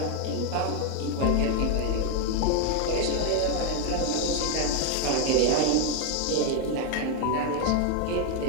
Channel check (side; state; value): both; different; correlation 0.01